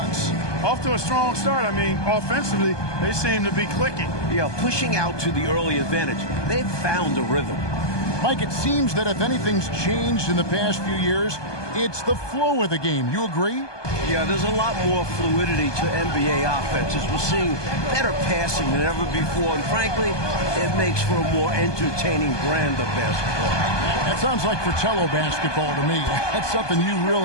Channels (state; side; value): late; right; 1.2 ms